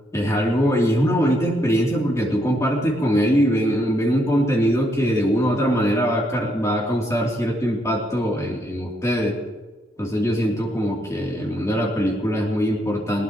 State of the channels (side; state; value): both; normal; correlation 0.75